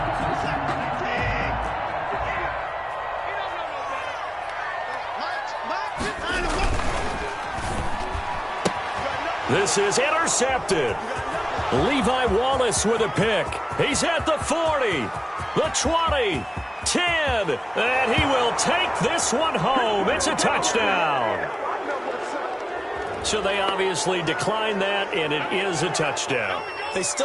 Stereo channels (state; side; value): identical; both; correlation 1.00